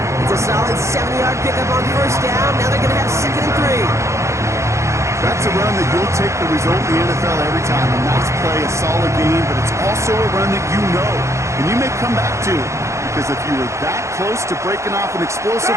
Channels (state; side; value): late; left; 0.14 ms